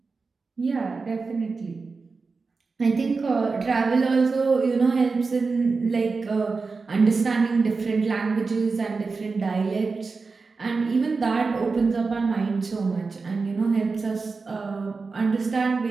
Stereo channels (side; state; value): left; quieter; 4.3 dB